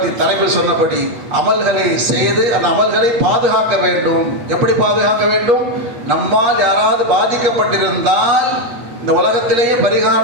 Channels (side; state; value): left; late; 8.4 ms